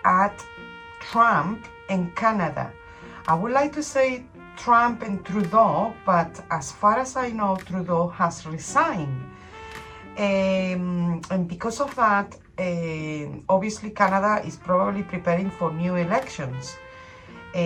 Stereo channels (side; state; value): both; identical; correlation 1.00